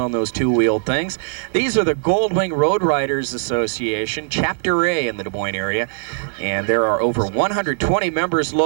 those two-wheeled things. These are the Goldwing Road Riders Association, Chapter A in the Des Moines area, and there are over 120 members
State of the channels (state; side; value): silent; left; 57 dB below the other